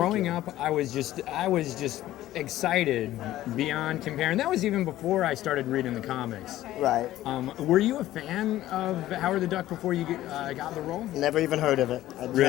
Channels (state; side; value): quieter; right; 14.5 dB